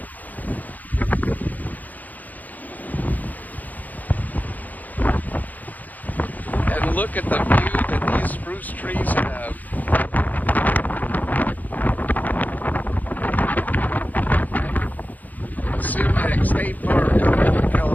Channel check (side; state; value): right; late; 0.081 ms